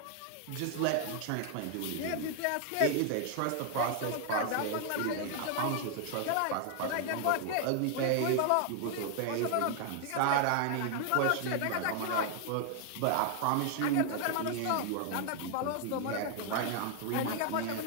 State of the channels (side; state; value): both; different; correlation 0.00